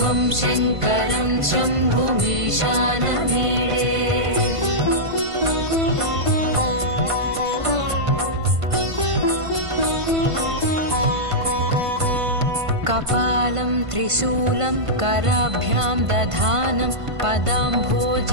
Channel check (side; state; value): left; late; 1.5 ms